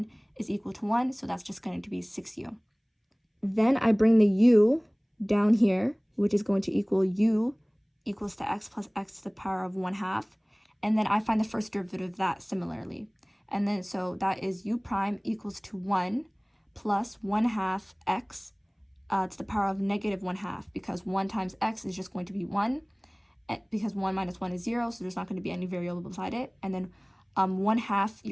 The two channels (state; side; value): identical; both; correlation 1.00